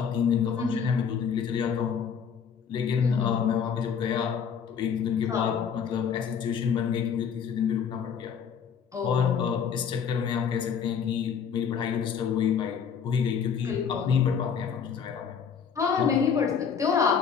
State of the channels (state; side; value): quieter; right; 7.0 dB